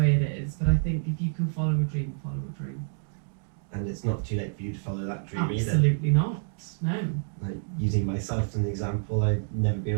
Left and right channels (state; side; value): silent; left; digital silence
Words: it is. But I think if you can follow a dream, follow a dream. And it's not too late for you to follow that dream either. Absolutely not. No. Like, using myself as an example, I've never been